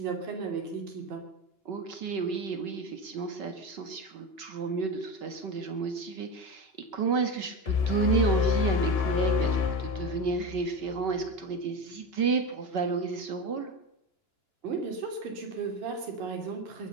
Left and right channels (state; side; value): late; right; 2.9 ms